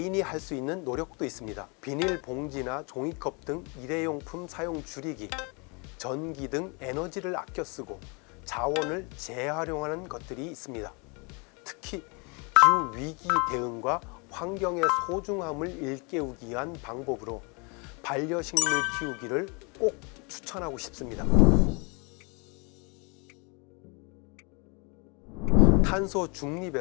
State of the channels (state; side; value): quieter; right; 31.6 dB